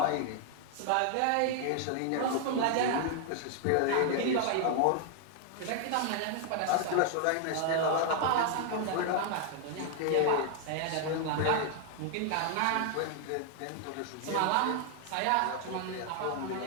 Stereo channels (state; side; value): different; both; correlation 0.00